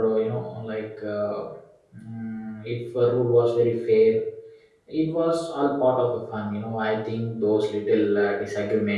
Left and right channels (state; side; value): identical; both; correlation 1.00